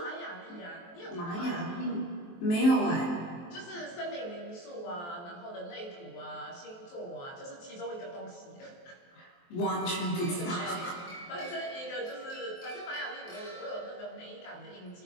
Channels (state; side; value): late; right; 23 ms